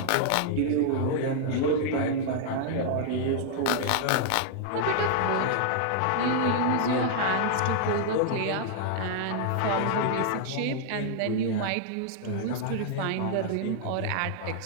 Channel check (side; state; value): both; different; correlation -0.01